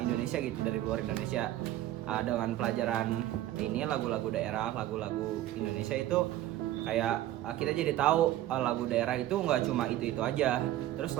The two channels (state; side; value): quieter; left; 13.9 dB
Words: gitu, dari luar Indonesia. Dengan pelajaran ini lagu-lagu daerah, lagu-lagu Indonesia itu kayak kita jadi tahu lagu daerah itu nggak cuma itu aja. Terus